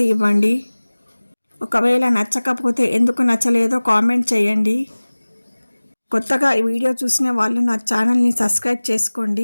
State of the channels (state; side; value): inverted; both; correlation -1.00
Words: ఇవ్వండి. ఒకవేళ నచ్చకపోతే ఎందుకు నచ్చలేదో కామెంట్ చేయండి. కొత్తగా ఈ వీడియో చూసిన వాళ్ళు నా ఛానల్ని సబ్స్క్రైబ్